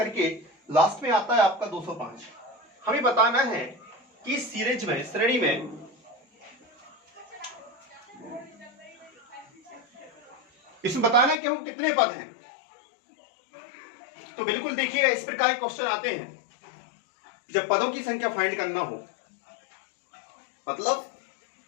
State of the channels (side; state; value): right; drops out; at 11.4 s